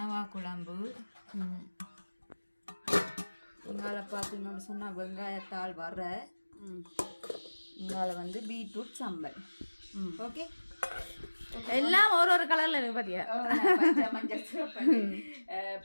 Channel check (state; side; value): inverted; both; correlation -1.00